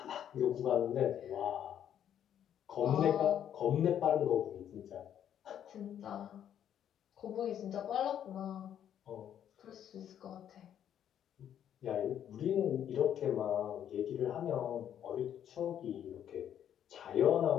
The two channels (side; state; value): right; quieter; 9.9 dB